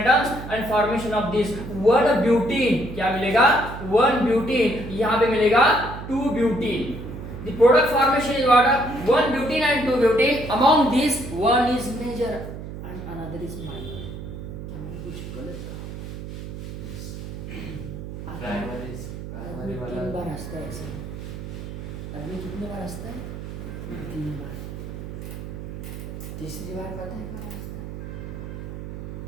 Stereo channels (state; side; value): noise; right; hum, 9 dB below the sound